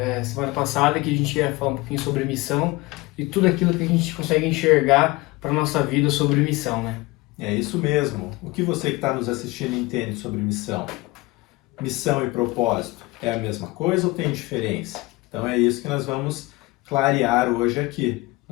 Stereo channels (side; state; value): right; quieter; 22.1 dB